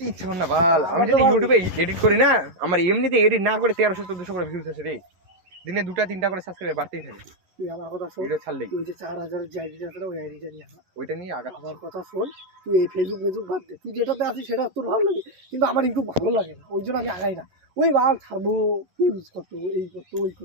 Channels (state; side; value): late; left; 11 ms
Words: ইচ্ছা করে না বাল আমি যদি ইউটিউবে এডিট করি না আমার এমনিতে এডিট না করে 1300-1400 করে ভিউজ আসে রে দিনে 2-3টা করে সাবস্ক্রাইবার বাড়তেই থাকে। তুই আমার কথা শোন, ভিডিও ছাড়লেই তুই যে 4000 যে আইডিটা আছে না, ওই আইডিটা নিয়ে আয়। ওইটা নিয়ে আগা। আমার কথা শোন, তুই এই ফেসবুক বাদ দে, তুই যেটাতে আছিস সেটা তোর ভালো লাগে, কিন্তু আমার ইউটিউব ভালো লাগে না, ওই জন্য আমি আগাই না। ওই বাল ছাড়বো, ইউজ করতো, এই করতো, ওই করতো।